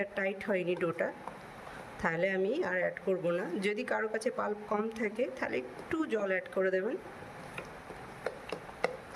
টাইট হয়নি ডোটা, তাহলে আমি আর অ্যাড করব না। যদি কারো কাছে পাল্প কম থাকে তাহলে একটু জল অ্যাড করে দেবেন।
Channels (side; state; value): both; identical; correlation 1.00